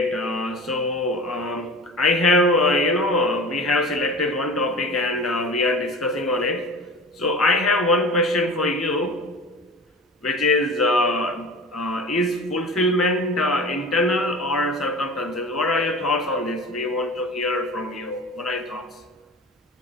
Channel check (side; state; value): both; normal; correlation 0.36